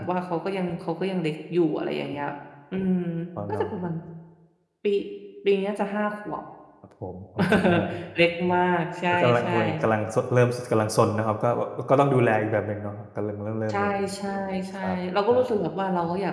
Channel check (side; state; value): both; identical; correlation 1.00